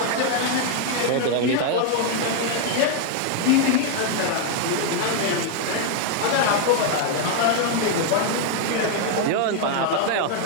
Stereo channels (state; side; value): different; both; correlation 0.00